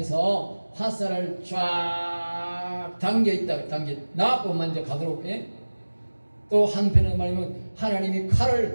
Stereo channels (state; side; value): inverted; both; correlation -1.00